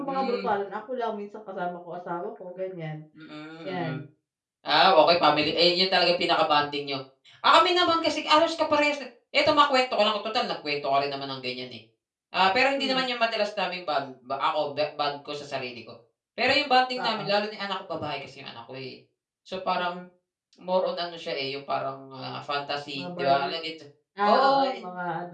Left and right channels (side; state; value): both; identical; correlation 1.00